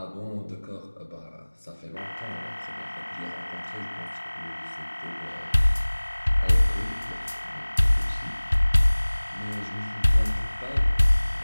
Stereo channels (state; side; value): inverted; both; correlation -1.00